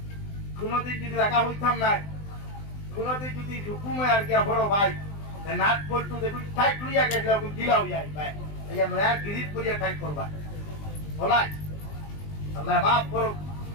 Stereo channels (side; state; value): right; late; 20 ms